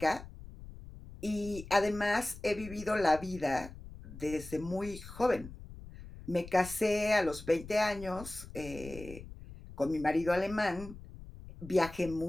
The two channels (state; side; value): noise; left; rumble, 15 dB below the sound